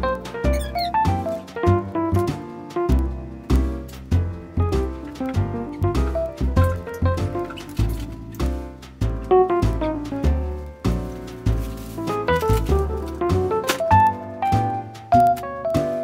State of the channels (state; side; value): identical; both; correlation 1.00